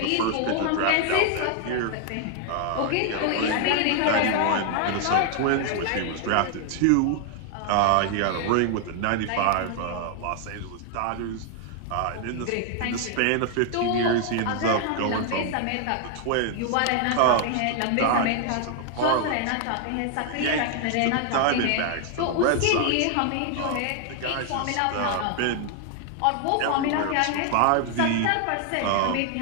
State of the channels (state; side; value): different; both; correlation 0.00